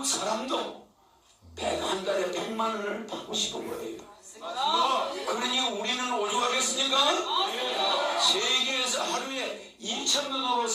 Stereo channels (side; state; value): both; identical; correlation 1.00